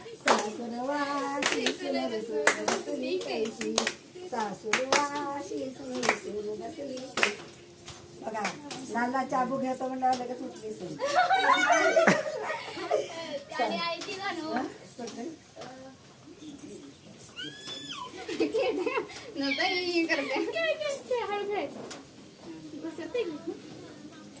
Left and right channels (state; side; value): identical; both; correlation 1.00